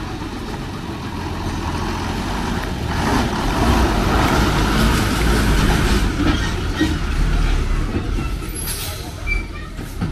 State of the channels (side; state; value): both; identical; correlation 1.00